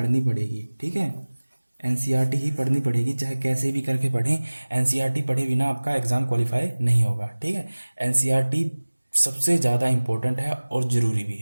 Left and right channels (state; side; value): inverted; both; correlation -1.00